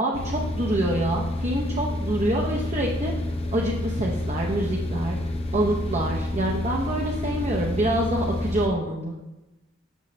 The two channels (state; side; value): normal; both; correlation 0.64